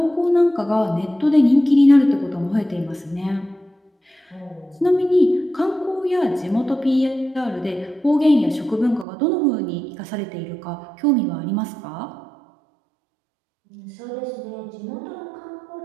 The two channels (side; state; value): left; drops out; at 9.1 s